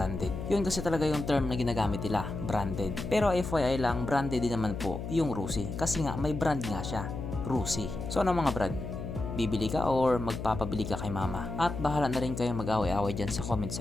Yun kasi talaga yung term na ginagamit nila, branded. Pero FYI lang, branded din naman po yung Rusi kasi nga may brand nga siya, Rusi. So ano mga brad, bibili ka or magpapabili ka kay mama? At bahala na rin kayo mag-away-away dyan sa comment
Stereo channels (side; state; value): left; noise; hum, 6 dB below the sound